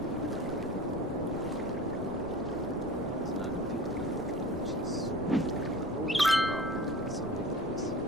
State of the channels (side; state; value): left; noise; rumble, 13 dB below the sound